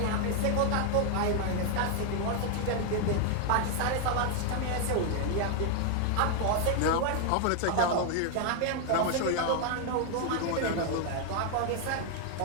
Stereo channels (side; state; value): both; different; correlation 0.00